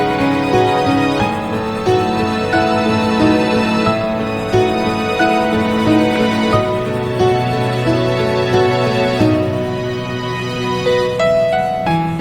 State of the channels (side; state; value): both; identical; correlation 1.00